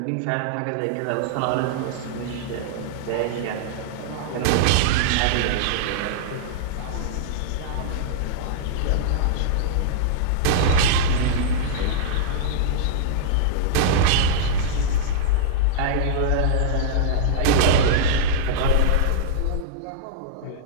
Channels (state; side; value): different; both; correlation -0.02